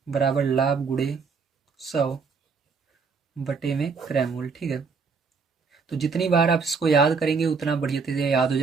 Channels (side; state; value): left; quieter; 5.1 dB